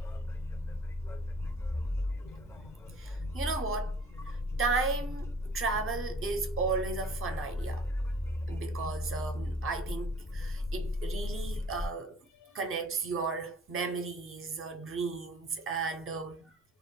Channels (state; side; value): normal; both; correlation 0.51